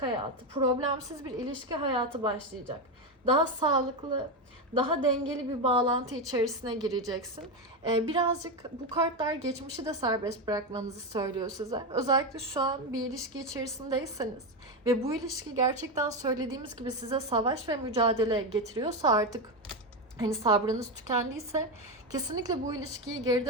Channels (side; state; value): both; normal; correlation 0.12